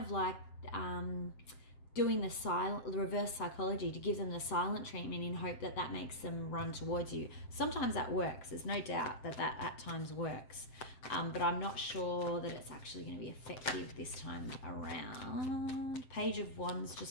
like doing the reverse psychology to give them the silent treatment in hope that that makes them run towards you. Sometimes that works. There's no doubt that at times works. But I'm not sure that it's actually going to be effective this time around. Page of Wands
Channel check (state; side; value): late; right; 7.7 ms